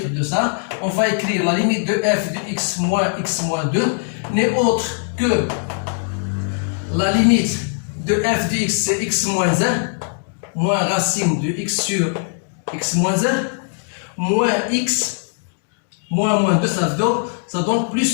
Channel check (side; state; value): right; silent; 64 dB below the other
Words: de ça, on va écrire la limite de f de x moins 2 n'est autre que la limite de f de x, c'est x moins 1, moins racine de x sur x moins 1, moins x, moins 2, ça donne